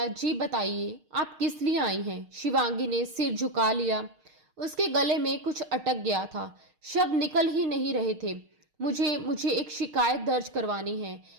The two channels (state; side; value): late; left; 6.5 ms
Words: जी बताइए आप किस लिए आई हैं? शिवांगी ने सिर झुका लिया। उसके गले में कुछ अटक गया था, शब्द निकल ही नहीं रहे थे। मुझे मुझे एक शिकायत दर्ज करवानी है,